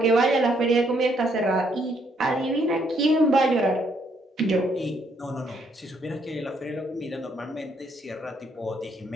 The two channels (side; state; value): both; normal; correlation 0.71